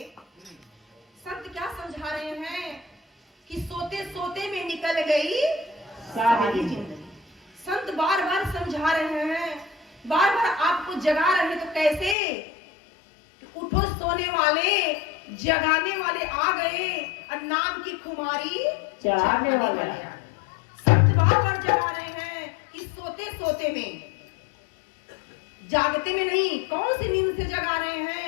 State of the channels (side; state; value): right; drops out; at 12.2 s